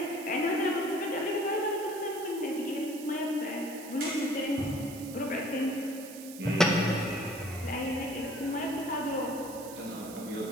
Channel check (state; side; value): noise; right; hiss, 14 dB below the sound